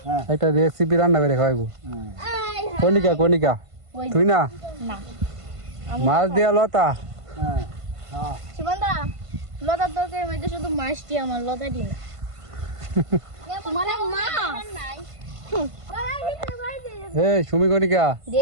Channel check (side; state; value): left; late; 1.5 ms